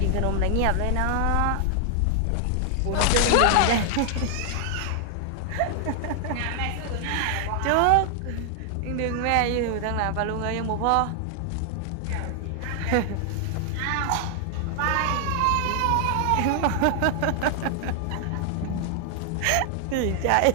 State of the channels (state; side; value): different; both; correlation 0.00